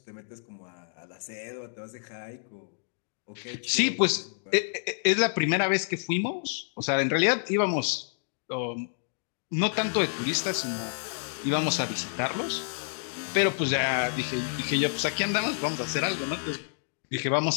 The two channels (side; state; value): right; silent; digital silence